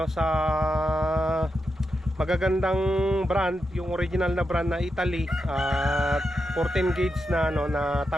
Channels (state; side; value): normal; both; correlation 0.87